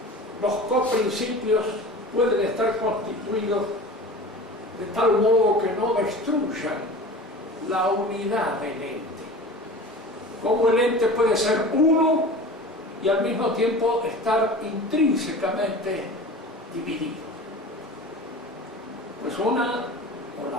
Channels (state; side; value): normal; both; correlation 0.36